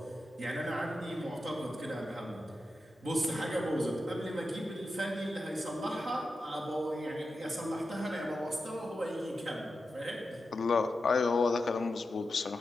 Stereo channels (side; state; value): both; normal; correlation 0.90